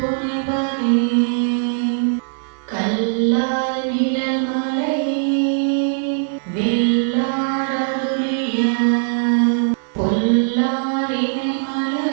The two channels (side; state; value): left; silent; digital silence